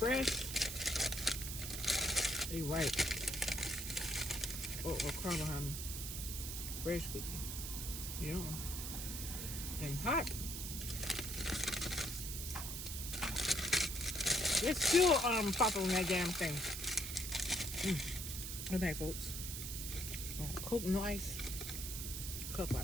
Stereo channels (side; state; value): right; noise; hiss, 5 dB below the sound